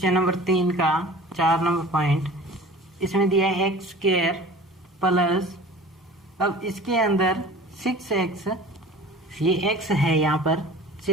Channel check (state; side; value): normal; both; correlation 0.42